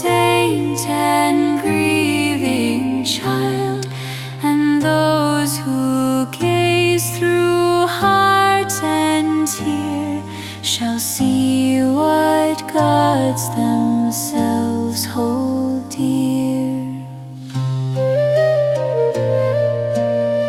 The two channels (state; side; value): identical; both; correlation 1.00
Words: and grieving child, and those who gaze through heart and tear shall see what gods themselves hold dear.